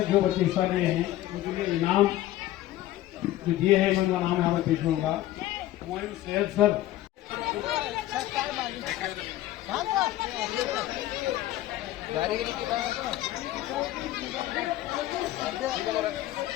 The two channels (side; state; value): right; quieter; 14.8 dB